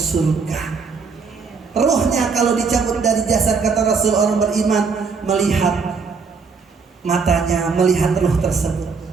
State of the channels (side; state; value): left; quieter; 5.0 dB